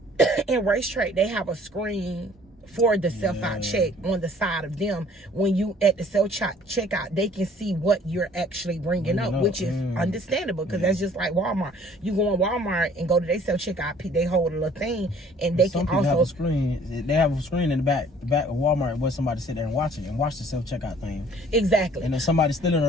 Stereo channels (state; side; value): normal; both; correlation 0.55